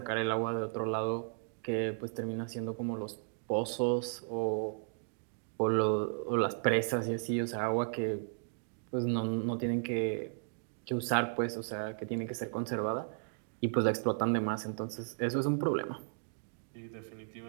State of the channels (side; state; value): left; silent; digital silence